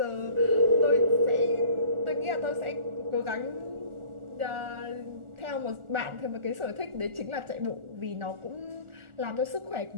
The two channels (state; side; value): late; left; 1.4 ms